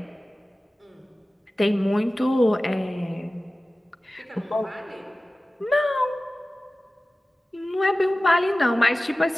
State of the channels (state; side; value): normal; both; correlation 0.97